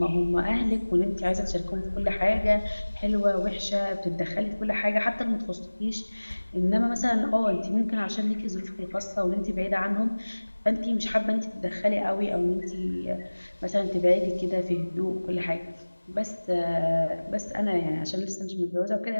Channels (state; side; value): inverted; both; correlation -1.00